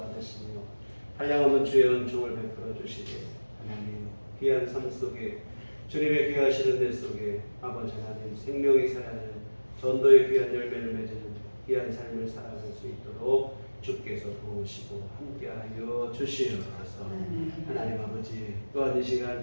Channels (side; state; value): both; inverted; correlation -1.00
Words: 한량없는 주의 은총을 베풀어 주시되 하나님 귀한 삶 속에 주님의 귀하시는 데 속에 아버지 하나님 생명이 살아나는 전도의 귀한 열매를 맺는 귀한 삶을 살아갈 수 있도록 주께서 도우시고 함께하여 주시옵소서. 하나님 아버지 또한 이 시간